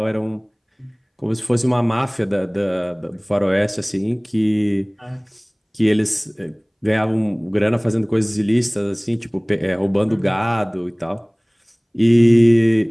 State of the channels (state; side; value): identical; both; correlation 1.00